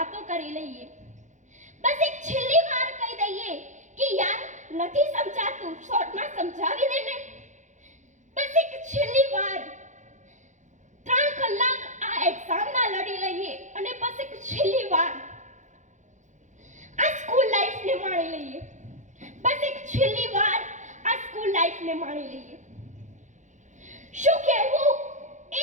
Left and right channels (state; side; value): late; left; 0.35 ms